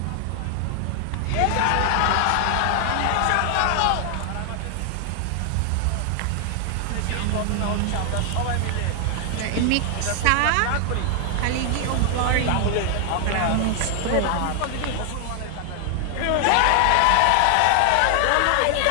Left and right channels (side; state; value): both; different; correlation 0.00